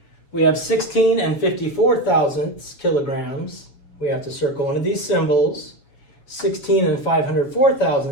We have 16 and 54 thousandths kilograms. We have to circle one of these symbols. 16 and 504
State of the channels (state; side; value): late; right; 7.1 ms